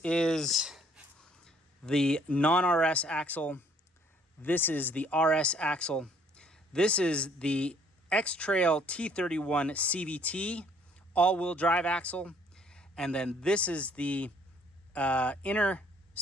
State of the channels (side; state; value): both; normal; correlation 0.62